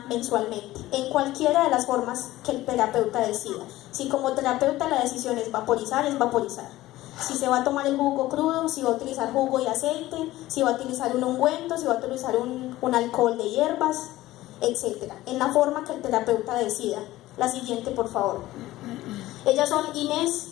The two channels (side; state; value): right; quieter; 16.4 dB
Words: mensualmente, en cualquiera de las formas que el terapeuta decida. Si como terapeuta la decisión es vaporizar, es vaporizar. Si se va a tomar el jugo crudo, si va a utilizar jugo y aceite, si va a utilizar un ungüento, si va a utilizar un alcohol de hierbas, etc. En la forma que el terapeuta decida. La siguiente, por favor. Ellas son Inés